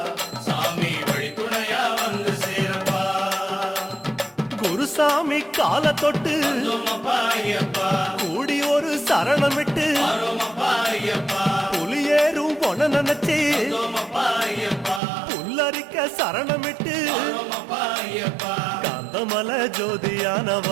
சாமி வழி துணையா வந்து சேரப்பா. குருசாமி கால தொட்டு கூடி ஒரு சரணமிட்டு புலியேறும் பொன நினைச்சு புல்லரிக்க சரணமிட்டு காந்தமலை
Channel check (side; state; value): left; drops out; at 15.0 s